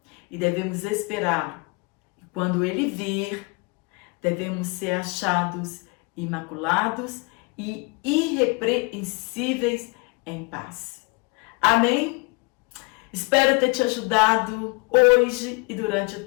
E devemos esperar. E quando Ele vir, devemos ser achados imaculados e irrepreensíveis em paz. Amém? Espero ter te ajudado hoje e durante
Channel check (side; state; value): right; quieter; 28.3 dB